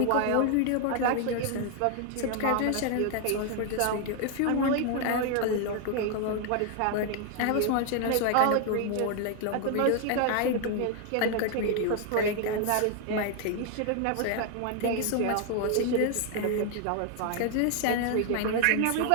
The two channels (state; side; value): different; both; correlation 0.00